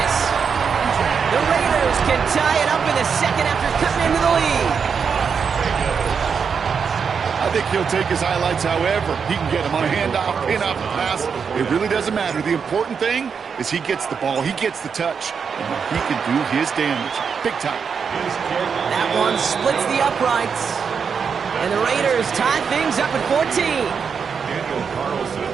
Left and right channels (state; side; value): quieter; left; 6.3 dB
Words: The Raiders can tie it up in the second after cutting into the lead. I think he'll take his highlights however he can get them on a handoff, pin-off, pass. It really doesn't matter. The important thing is he gets the ball, he gets the touch, and he can do his damage. Big time. That one splits the uprights. And the Raiders tie things up at 14. Daniel Carlson,